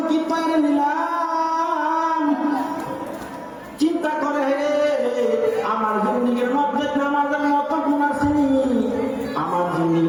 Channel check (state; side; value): identical; both; correlation 1.00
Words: কি তৈরি নিলাম? চিন্তা করে আমার জিন্দেগির মধ্যে নামাজের মতো গুণ আসেনি, আমার